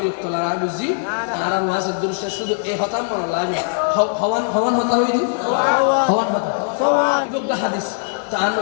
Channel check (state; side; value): silent; right; 59 dB below the other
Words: লাগা বুঝি আর ওয়াজের দৃশ্য শুধু এই হতাম মনে লাগে হওয়ান হওয়ান হতা হইনি হওয়ান হতা হাদিস তার